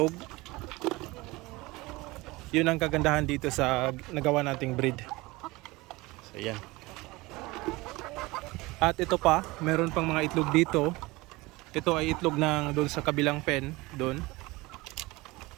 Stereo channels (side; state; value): left; quieter; 21.9 dB